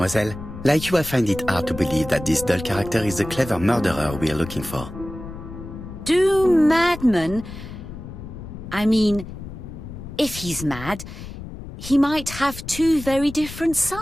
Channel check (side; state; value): left; noise; rumble, 11 dB below the sound